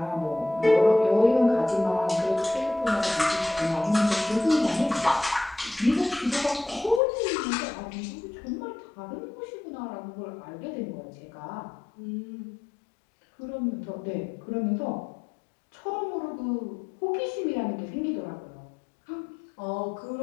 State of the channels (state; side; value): drops out; right; at 7.0 s